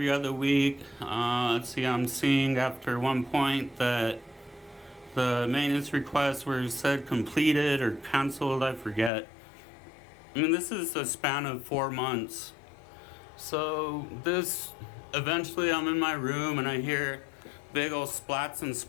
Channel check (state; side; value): drops out; right; at 9.1 s